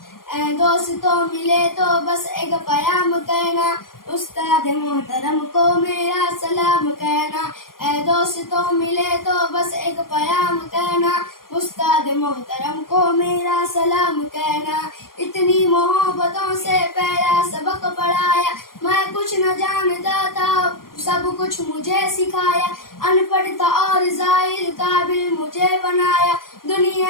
اے دوستوں ملے تو بس ایک پیام کہنا، استاد محترم کو میرا سلام کہنا۔ اے دوستوں ملے تو بس ایک پیام کہنا، استاد محترم کو میرا سلام کہنا۔ اتنی محبتوں سے پہلا سبق پڑھایا، میں کچھ نہ جانتا تھا سب کچھ مجھے سکھایا۔ ان پڑھ تھا اور ظاہر قابل مجھے بنایا،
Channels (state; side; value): late; right; 0.91 ms